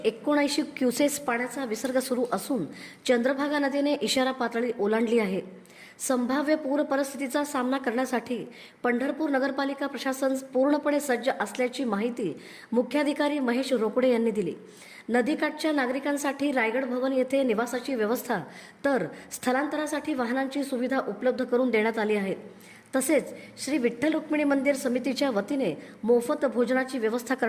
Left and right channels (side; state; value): both; identical; correlation 1.00